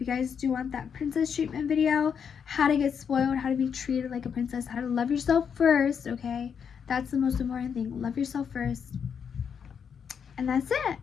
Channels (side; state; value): right; quieter; 7.1 dB